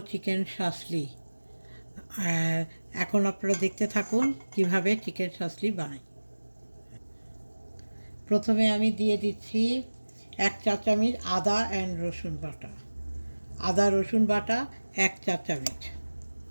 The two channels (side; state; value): both; inverted; correlation -1.00